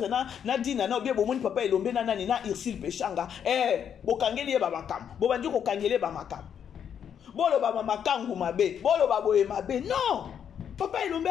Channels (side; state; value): right; quieter; 8.4 dB